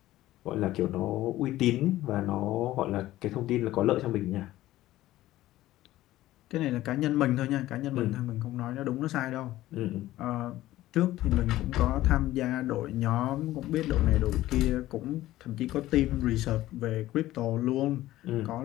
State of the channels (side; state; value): right; quieter; 15.5 dB